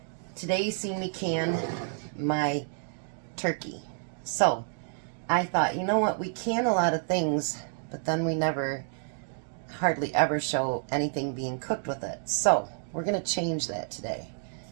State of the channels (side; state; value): left; silent; 58 dB below the other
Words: Today you see me can my turkey. So, I thought, you know what, we can a lot of things, but then we hardly ever show anything being cooked with it. So, we're going to change that today.